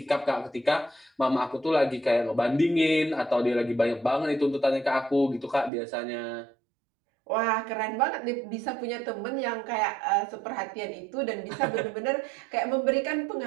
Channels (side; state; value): left; drops out; at 5.7 s